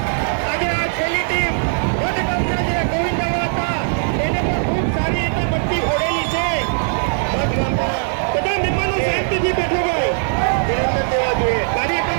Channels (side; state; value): left; silent; 65 dB below the other